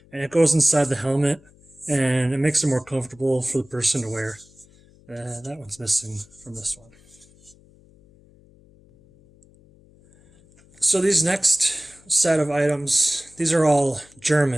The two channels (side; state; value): left; noise; hum, 28 dB below the sound